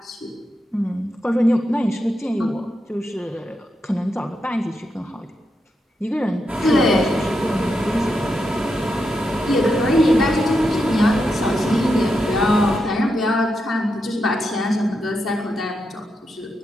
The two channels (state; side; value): normal; both; correlation 0.85